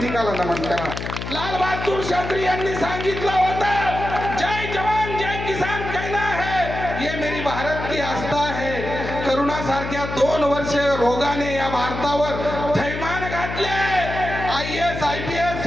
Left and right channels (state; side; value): noise; left; hum, 7 dB below the sound